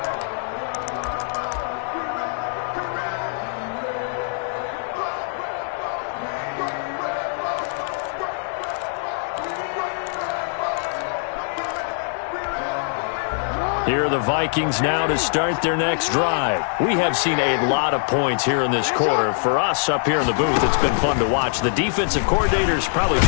Here are the Vikings now to start their next drive. We have seen a lot of points here in this quarter. For us up here in the booth, it's been fun to watch. The defensive coordinators probably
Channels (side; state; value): right; silent; 63 dB below the other